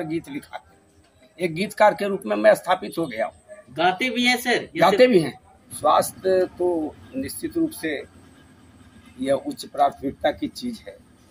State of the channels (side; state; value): both; identical; correlation 1.00